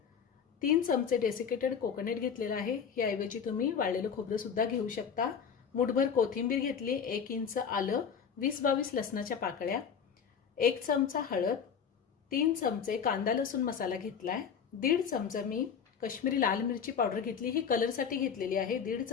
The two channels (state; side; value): quieter; right; 7.0 dB